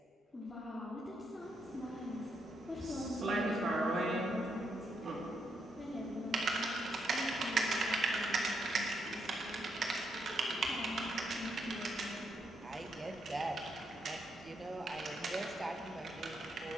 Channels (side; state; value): both; normal; correlation 0.78